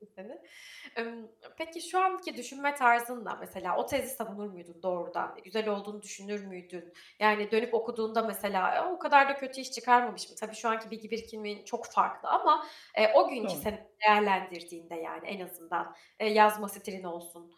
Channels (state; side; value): identical; both; correlation 1.00